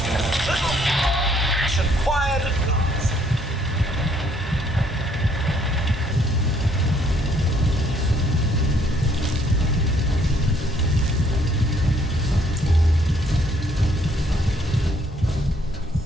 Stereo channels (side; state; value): both; normal; correlation 0.66